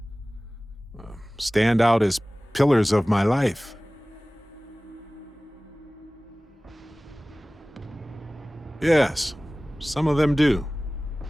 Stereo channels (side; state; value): both; normal; correlation 0.98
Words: stand out as pillars of my life. Yes, some of them do.